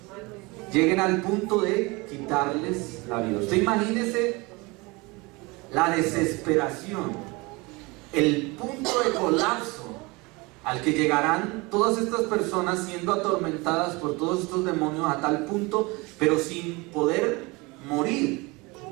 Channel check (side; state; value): left; quieter; 25.2 dB